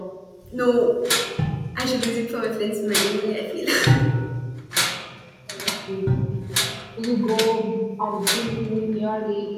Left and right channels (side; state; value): both; identical; correlation 1.00